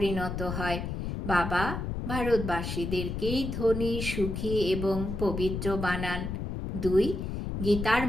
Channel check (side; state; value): left; noise; rumble, 4 dB below the sound